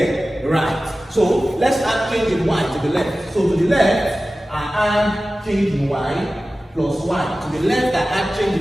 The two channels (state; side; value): normal; both; correlation 0.96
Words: Right. So let's add change in y to the left. So to the left, I add change in y plus y. To the left, I add